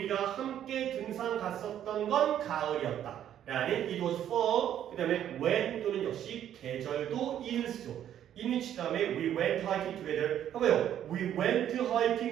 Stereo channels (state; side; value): quieter; left; 10.6 dB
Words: 함께 등산 갔었던 건 가을이었다. 라는 it was for 그 다음에 when 또는 역시 계절도 in을 쓰죠. in이치 다음에 we went hiking together 해봐요. we went